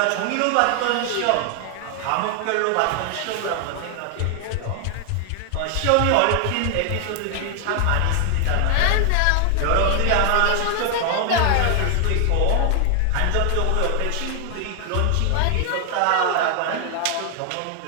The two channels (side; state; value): both; different; correlation 0.00